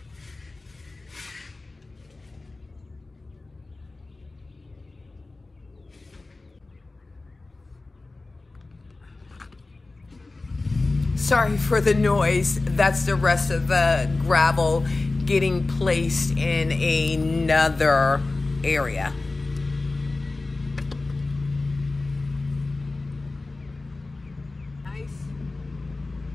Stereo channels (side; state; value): right; quieter; 3.3 dB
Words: Sorry for the noise. That's the rest of the gravel getting placed in another area. Nice.